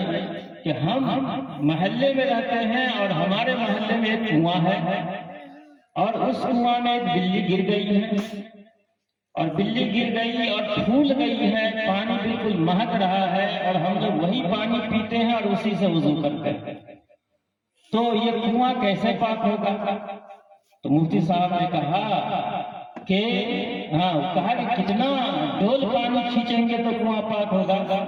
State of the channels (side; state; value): both; identical; correlation 1.00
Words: کہ ہم محلے میں رہتے ہیں اور ہمارے محلے میں ایک کنواں ہے اور اس کنواں میں ایک بلی گر گئی ہے اور بلی گر گئی اور پھول گئی ہے، پانی بالکل مہک رہا ہے اور ہم لوگ وہی پانی پیتے ہیں اور اسی سے وضو کرتے ہیں، تو یہ کنواں کیسے پاک ہوگا؟ تو مفتی صاحب نے کہا کہ کہا کہ کتنا ڈول پانی کھینچیں گے تو کنواں پاک ہوگا؟